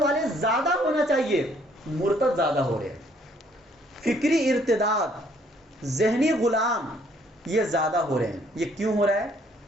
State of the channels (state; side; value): normal; both; correlation 0.64